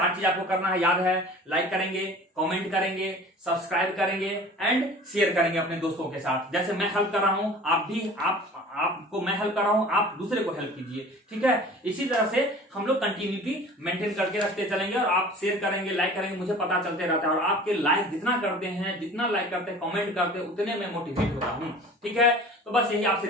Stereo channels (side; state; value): both; normal; correlation 0.43